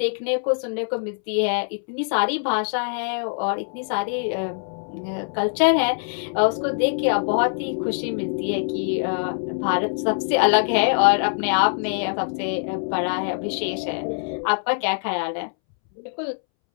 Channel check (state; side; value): silent; right; 63 dB below the other